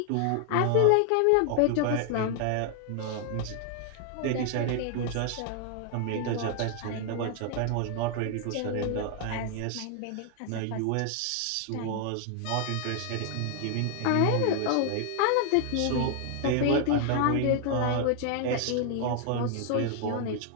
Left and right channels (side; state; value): both; different; correlation 0.00